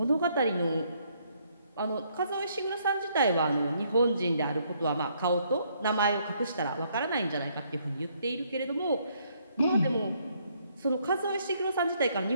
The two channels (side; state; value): both; inverted; correlation -0.69